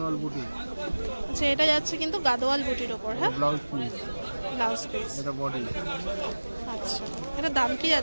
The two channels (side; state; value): both; inverted; correlation -1.00